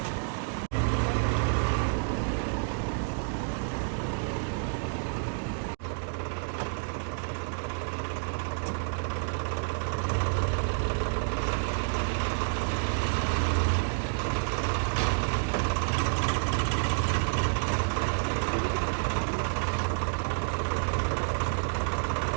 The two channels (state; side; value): silent; left; 58 dB below the other